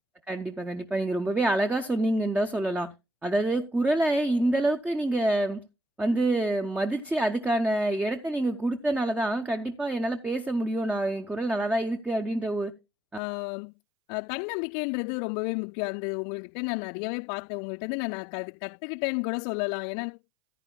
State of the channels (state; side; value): drops out; right; at 13.2 s